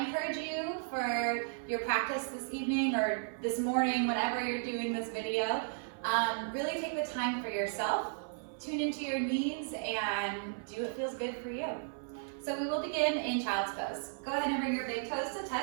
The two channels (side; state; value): left; silent; 55 dB below the other